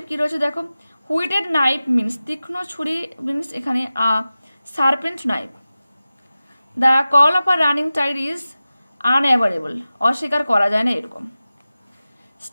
কি রয়েছে দেখো। হুইটেড নাইফ মিনস তীক্ষ্ণ ছুরি, মিনস এখানে serpent knife. The call of a running tide is unavoidable, অস্বীকার করা যায় না এরকম।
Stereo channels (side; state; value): both; inverted; correlation -0.96